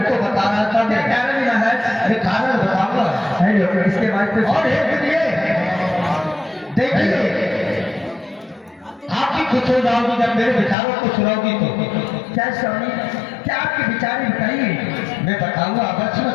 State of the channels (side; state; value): right; drops out; at 10.8 s